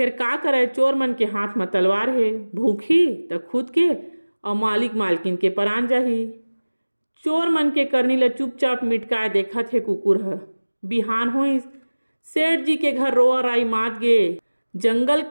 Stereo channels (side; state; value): both; inverted; correlation -1.00